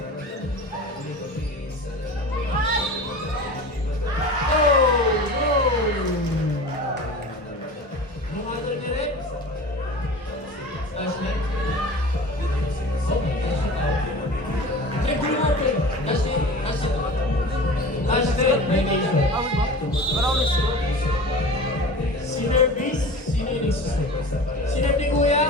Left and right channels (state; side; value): normal; both; correlation 0.36